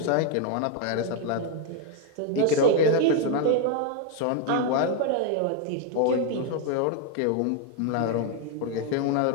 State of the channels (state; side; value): different; both; correlation 0.01